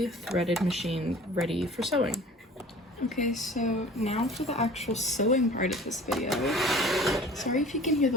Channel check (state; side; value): normal; both; correlation 0.45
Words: threaded machine ready for sewing. Okay, so now for the actual sewing part of this video. Sorry if you can hear